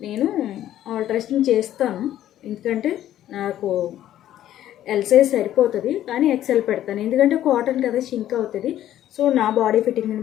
నేను ఆల్టరేషన్ చేస్తాను. ఎందుకంటే నాకు ఎల్ సైజ్ సరిపోతుంది, కానీ ఎక్సెల్ పెడతాను. ఎందుకంటే కాటన్ కదా, షింక్ అవుతుంది. సో నా బాడీ ఫిట్టింగ్ని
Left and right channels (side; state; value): right; quieter; 12.3 dB